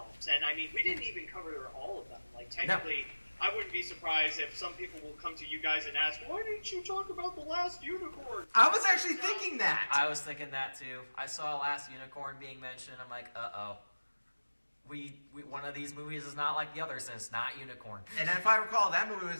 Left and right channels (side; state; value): both; inverted; correlation -1.00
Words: And I mean, we didn't even cover all of them. Like technically, I wouldn't be surprised if some people will come to you guys and ask, "Why didn't you talk about The Last Unicorn?" I was actually thinking that. I was thinking that too. I saw Last Unicorn being mentioned. I'm like, uh-oh. We one of these movies is not like the others, and it's not Unicorn. And if I recall, that movie was